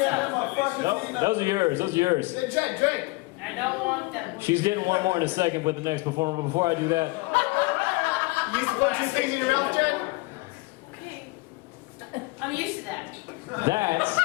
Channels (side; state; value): right; quieter; 23.9 dB